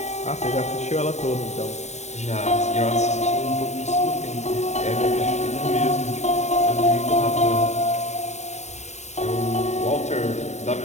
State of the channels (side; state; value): right; late; 0.33 ms